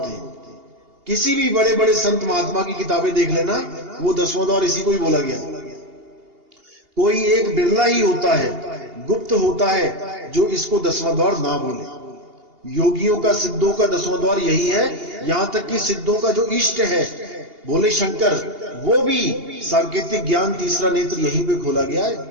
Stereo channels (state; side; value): late; left; 2.8 ms